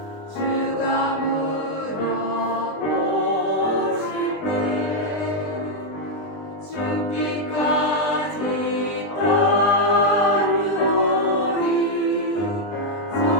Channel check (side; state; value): right; late; 20 ms